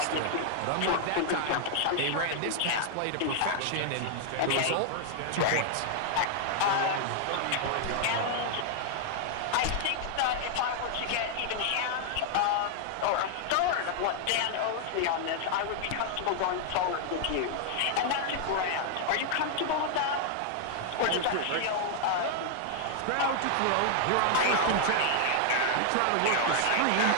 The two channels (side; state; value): both; different; correlation 0.00